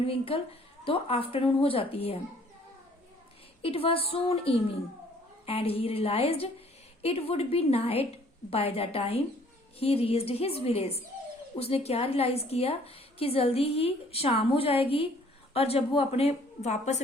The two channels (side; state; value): both; normal; correlation 0.58